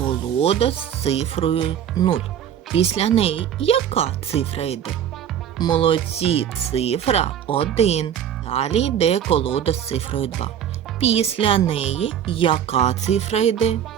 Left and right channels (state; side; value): quieter; left; 9.4 dB